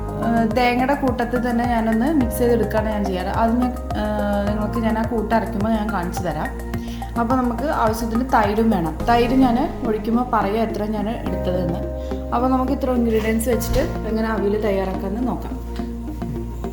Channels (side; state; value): both; identical; correlation 1.00